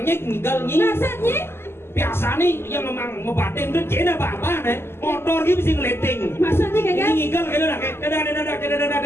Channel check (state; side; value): late; right; 0.12 ms